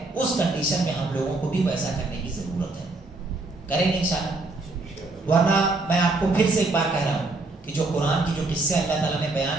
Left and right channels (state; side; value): quieter; left; 3.2 dB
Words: اس کنڈیشن میں ہم لوگوں کو بھی ویسا کرنے کی ضرورت ہے۔ کریں گے انشاءاللہ؟ ورنہ میں آپ کو پھر سے ایک بار کہہ رہا ہوں کہ جو قرآن کی جو قصے اللہ تعالیٰ نے